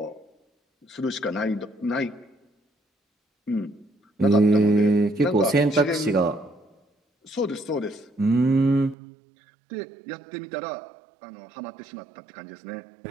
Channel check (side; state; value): left; drops out; at 9.0 s